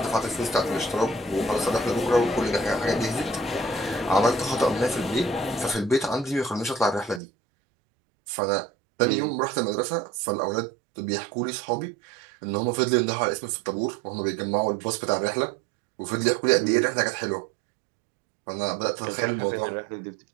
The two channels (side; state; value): left; drops out; at 7.2 s